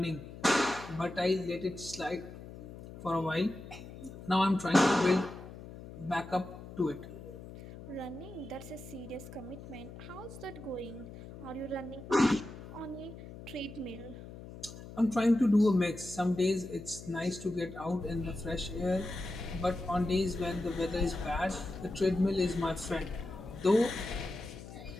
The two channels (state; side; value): noise; left; hum, 14 dB below the sound